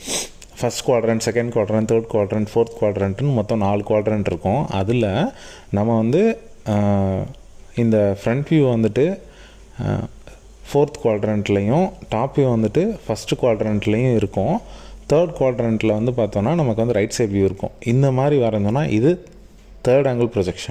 first quadrant, second quadrant, third quadrant, fourth குவாட்ரண்ட்டுன்னு மொத்தம் 4 குவாட்ரண்ட் இருக்கும். அதில் நம்ம வந்து இந்த ஃப்ரண்ட் வியூ வந்துட்டு ஃபோர்த் குவாட்ரண்ட்லேயும் டாப் வியூ வந்துட்டு ஃபஸ்ட்டு குவாட்ரண்ட்லேயும் இருக்கும். தேர்ட் குவாட்ரண்ட்டில் வந்து பார்த்தோன்னா நமக்கு வந்து ரைட் சைட் வியூ இருக்கும். இந்த மாதிரி வரைஞ்சோன்னா இது தேர்ட் ஆங்கிள்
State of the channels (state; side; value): identical; both; correlation 1.00